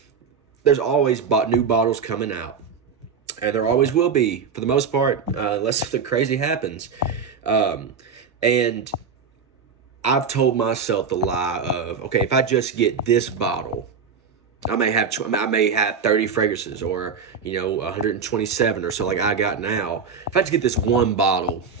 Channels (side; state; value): left; quieter; 5.9 dB